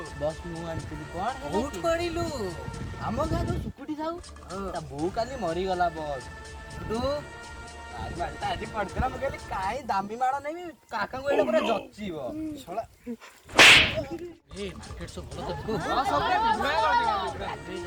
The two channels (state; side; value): identical; both; correlation 1.00